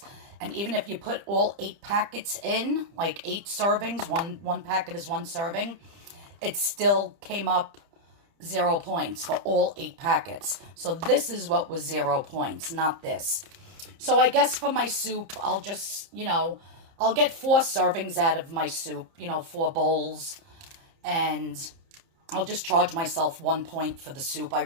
And even if you put all 8 packets in, like 8 servings, one packet is 1 serving, it still came up 0 points for all 8 packets. So this is what was 0 points, not this. So I guess for my soup, I'll just, I'll get 4 servings out of my soup, 4 bowls. And I'll just charge myself 1 point for the soup. I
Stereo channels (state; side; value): late; left; 30 ms